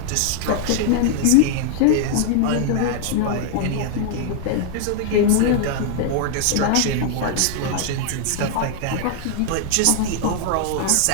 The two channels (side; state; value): both; different; correlation 0.00